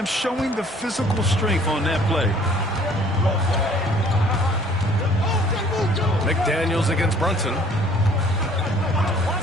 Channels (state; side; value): normal; both; correlation 0.56